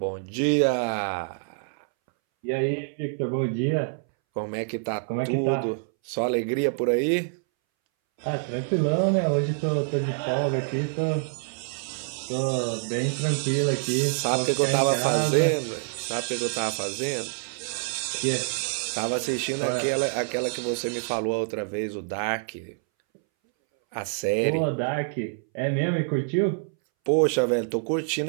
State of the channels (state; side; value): silent; left; 61 dB below the other